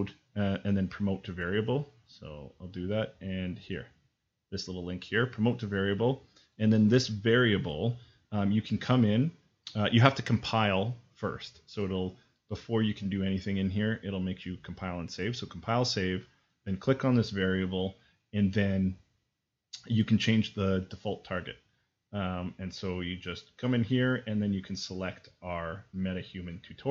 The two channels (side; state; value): both; identical; correlation 1.00